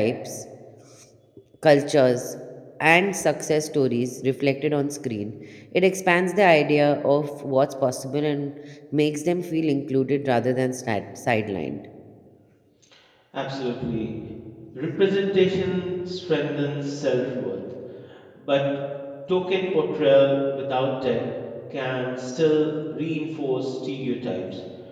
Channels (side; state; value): both; identical; correlation 1.00